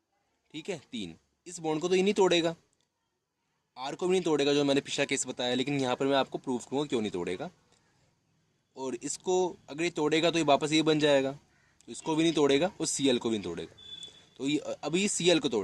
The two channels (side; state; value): both; identical; correlation 1.00